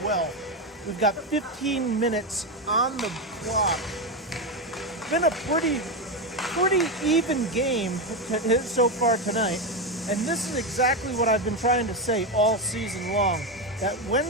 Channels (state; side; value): normal; both; correlation 0.11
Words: well. We've got 15 minutes on the clock. Been a pretty even game so far tonight. And this is exactly what I've been trying to say all season long. That when